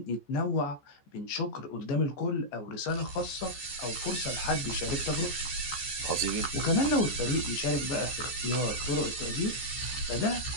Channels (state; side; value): late; right; 14 ms